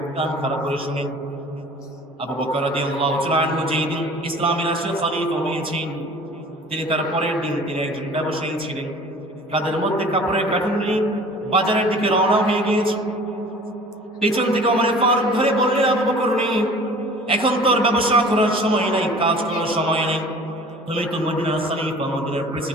কান খারাপ করে শুনে। আবু বকর রাদিয়াল্লাহু তাআলা আনহু যেদিন ইসলামী রাষ্ট্রের খলিফা হয়েছেন, তিনি তার পরের দিন তিনি একজন ব্যবসায়ী ছিলেন, কাদের মধ্যে কাপড়ের কার্টুন নিয়ে বাজারের দিকে রওনা হয়ে গিয়েছে। পেছন থেকে ওমর ফারুক ধরে বললেন, আবু বকর নেই, এখন তোর ব্যবসা করার সময় নাই, কাজ করার সময় নেই, তুমি তো মদিনার খলিফা, মদিনার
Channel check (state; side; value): normal; both; correlation 0.46